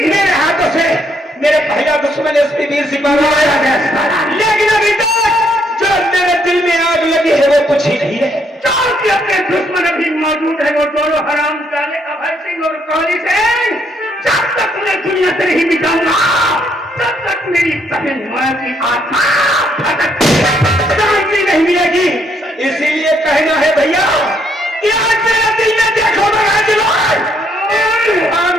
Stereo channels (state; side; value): normal; both; correlation 0.72